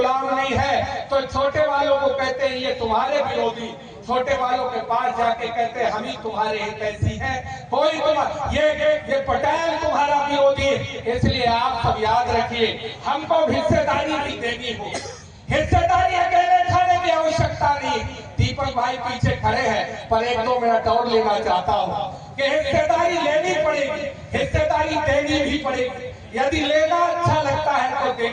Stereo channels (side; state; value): both; identical; correlation 1.00